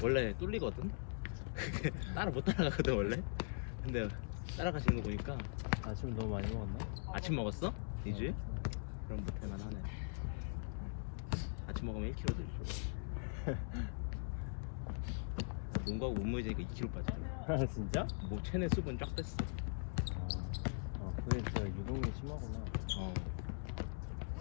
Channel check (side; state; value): right; silent; digital silence